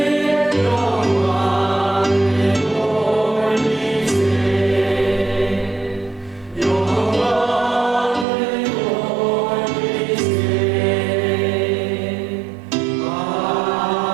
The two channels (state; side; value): drops out; left; at 8.2 s